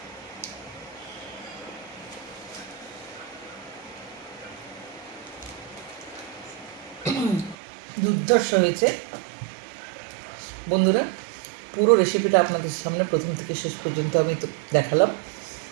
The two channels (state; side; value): drops out; left; at 7.6 s